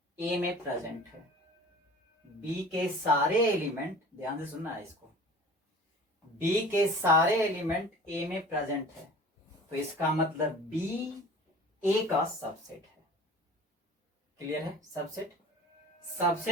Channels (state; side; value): normal; both; correlation 0.43